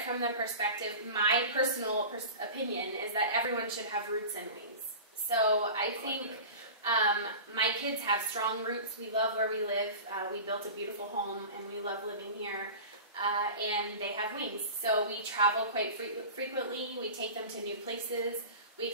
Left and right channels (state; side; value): inverted; both; correlation -0.34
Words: from the perspective, my personal opinion is that everyone should have roots and wings. So I think my kids have strong roots. We love where we live. We built a beautiful home and we love living here. And they have wings. So we travel quite frequently. We take them to new places. We